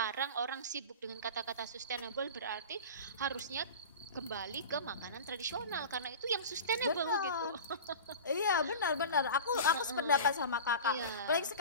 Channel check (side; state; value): both; inverted; correlation -0.33